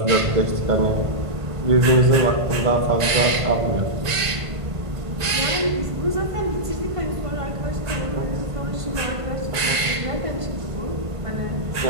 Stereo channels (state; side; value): late; left; 1.5 ms